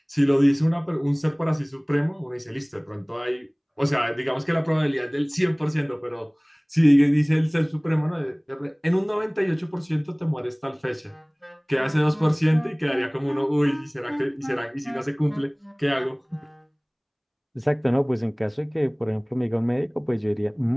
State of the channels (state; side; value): identical; both; correlation 1.00